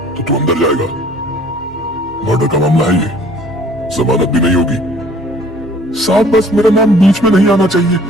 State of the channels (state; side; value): normal; both; correlation 0.54